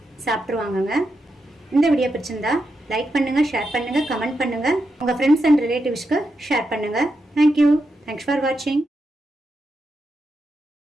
சாப்பிட்ருவாங்கங்க. இந்த வீடியோ பிடிச்சிருந்தா லைக் பண்ணுங்கள், ஷேர் பண்ணுங்கள், கமெண்ட் பண்ணுங்கள். உங்கள் ஃப்ரெண்ட்ஸ் அண்ட் ரிலேட்டிவ்ஸ்க்கு ஷேர் பண்ணுங்கள். தேங்க்யூ. தேங்க்ஸ் ஃபார் வாட்சிங்.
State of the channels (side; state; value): both; normal; correlation 0.85